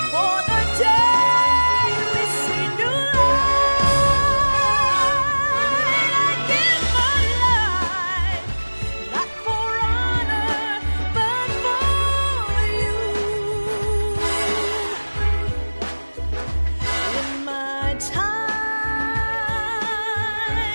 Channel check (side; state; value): both; inverted; correlation -1.00